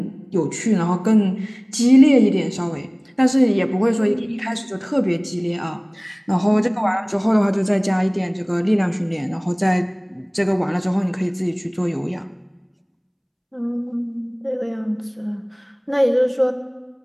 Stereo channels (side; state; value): both; identical; correlation 1.00